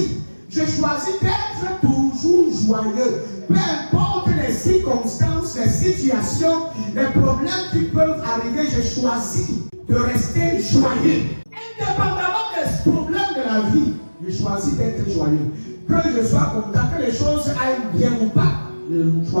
choisis d'être toujours joyeux. Peu importe les circonstances, les situations, les problèmes qui peuvent arriver, je choisis de rester joyeux. Indépendamment des problèmes de la vie, je choisis d'être joyeux. Que je sois content, que les choses aillent bien ou pas, je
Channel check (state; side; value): inverted; both; correlation -1.00